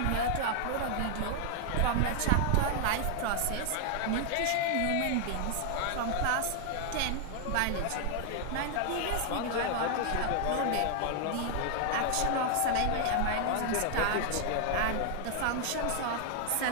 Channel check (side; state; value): both; different; correlation 0.00